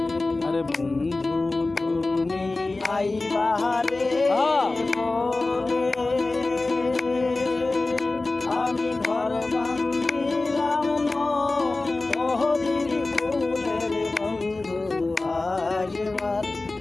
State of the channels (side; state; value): right; quieter; 3.2 dB